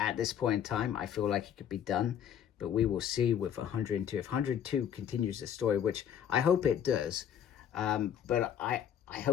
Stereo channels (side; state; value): right; quieter; 9.1 dB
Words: this point in time, I feel like it could be done, but we will see with 102. If 102 continues the story, which I hope it does, but I